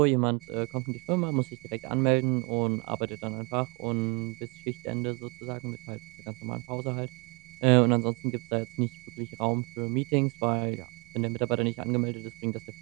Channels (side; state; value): left; quieter; 30.2 dB